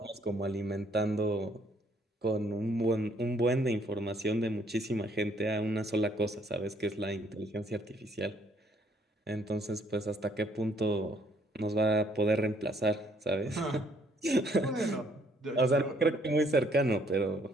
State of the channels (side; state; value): both; normal; correlation 0.66